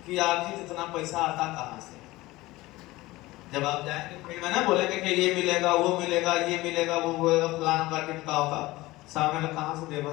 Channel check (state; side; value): quieter; right; 19.2 dB